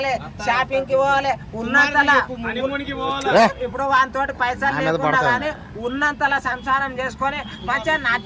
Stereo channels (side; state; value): both; identical; correlation 1.00